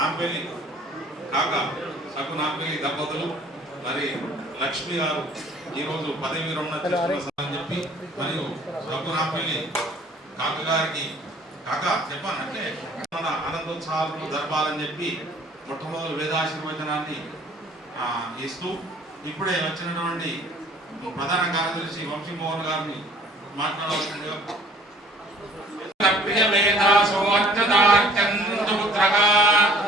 కాక సగ్గు నాంపల్లి దంపతులు మరి లక్ష్మి గారు ఈరోజు పదవి విరమణ చేసుకున్నారని చెప్పి మరియు సగ్గు నాంపల్లి కాక గారికి కాక చెప్పానంటే మన ఆనందోత్సాహాలను జరపాలని చెప్పి మొట్టమొదటి వేదాశీర్వచనాన్ని ఇస్తూ ఇప్పుడే వచ్చినటువంటి ప్రధాన కార్యదర్శి వంశీ మోహన్ గారిని మాట్లాడవలసిందిగా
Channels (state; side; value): normal; both; correlation 0.54